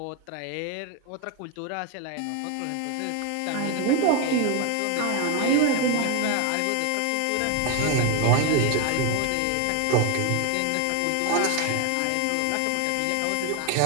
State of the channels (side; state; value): both; different; correlation 0.01